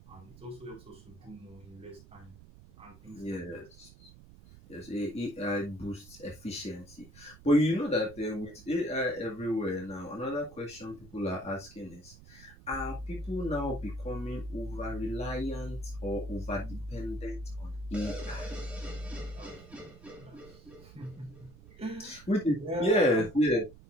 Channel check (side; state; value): right; noise; rumble, 20 dB below the sound